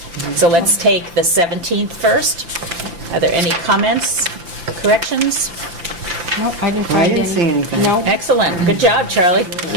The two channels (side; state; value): left; late; 5.8 ms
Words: So let's take the 17th first. Are there any comments, corrections? No, I didn't I find any. didn't see anything. No. Excellent, good job, Charlie.